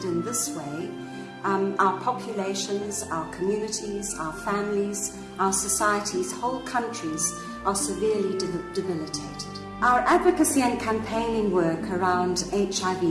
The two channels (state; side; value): identical; both; correlation 1.00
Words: in this way, our populations, our communities, our families, our societies, whole countries are severely debilitated. Our advocacy and campaigning work around